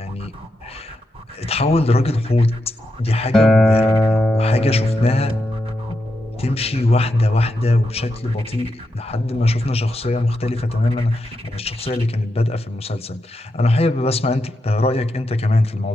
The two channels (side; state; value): both; normal; correlation 0.85